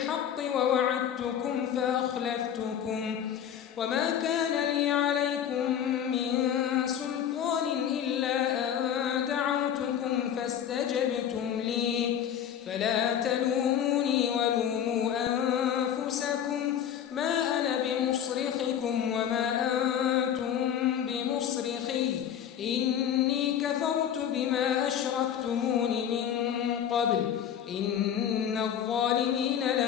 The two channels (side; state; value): right; quieter; 9.3 dB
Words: ووعدتكم فأخلفتكم وما كان لي عليكم من سلطان إلا أن دعوتكم فاستجبتم لي فلا تلوموني ولوموا أنفسكم ما أنا بمصرخكم وما أنتم بمصرخي إني كفرت بما أشركتمون من قبل إن الظالمين